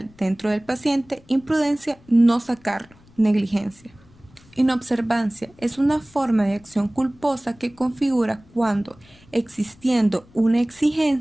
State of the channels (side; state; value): left; noise; rumble, 27 dB below the sound